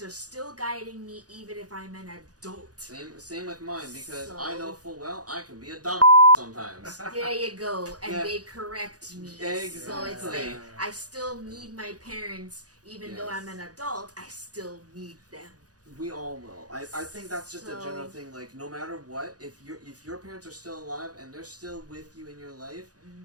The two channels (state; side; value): late; left; 0.68 ms